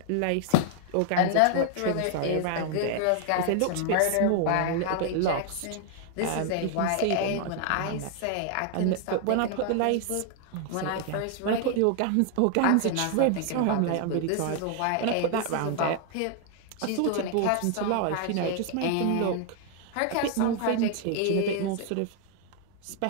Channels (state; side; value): different; both; correlation 0.00